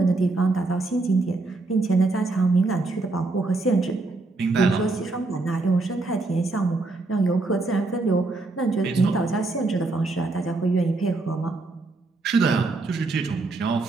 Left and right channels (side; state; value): left; quieter; 3.3 dB